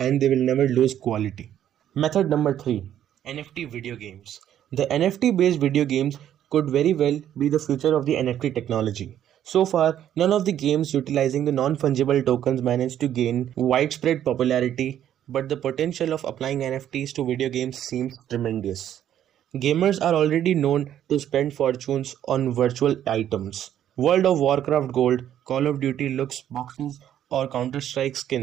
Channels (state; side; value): quieter; left; 10.8 dB